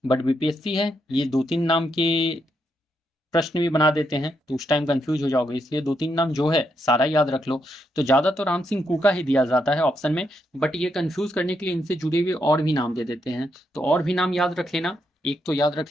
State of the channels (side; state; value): both; normal; correlation 0.79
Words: बट बीपीएससी है, ये 2-3 नाम के प्रश्न भी बना देते हैं तो उस टाइम कंफ्यूज हो जाओगे, इसलिए 2-3 नाम जो है सारा याद रख लो। तो ज्यादा तो राम सिंह कूका ही दिया जाता है ऑप्शन में, बट ये कंफ्यूज करने के लिए इनसे जुड़े हुए और भी नाम दे देते हैं। तो और भी नाम याद रख लेना, एक तो याद